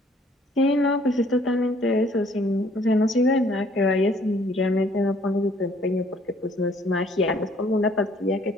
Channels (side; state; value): both; normal; correlation 0.60